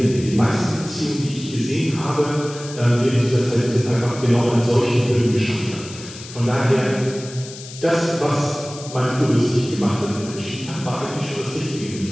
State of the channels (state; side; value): noise; left; hiss, 14 dB below the sound